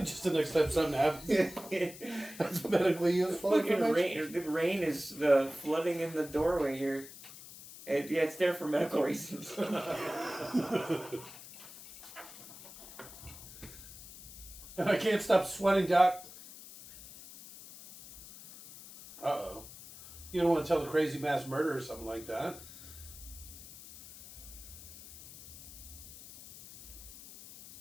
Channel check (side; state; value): left; noise; hiss, 16 dB below the sound